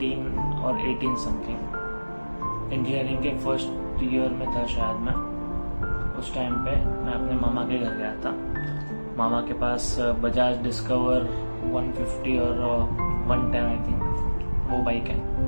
और 18 समथिंग। इंजीनियरिंग के फर्स्ट ईयर में था शायद मैं। उस टाइम पे मैं अपने मामा के घर गया था। मामा के पास बजाज डिस्कवर 150 और 110 आई थिंक वो बाइक है।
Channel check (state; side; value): inverted; both; correlation -1.00